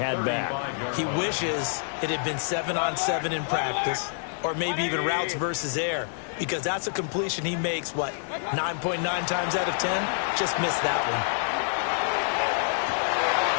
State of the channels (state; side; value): silent; right; digital silence